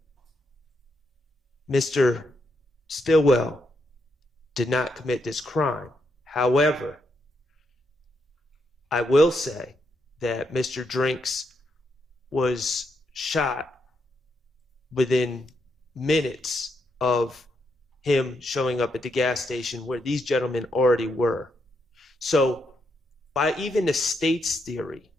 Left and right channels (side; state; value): both; normal; correlation 0.80